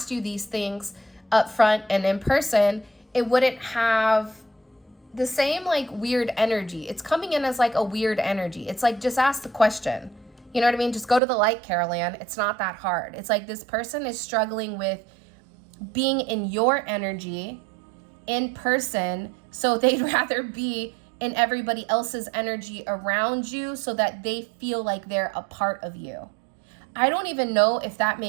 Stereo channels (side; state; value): left; drops out; at 11.2 s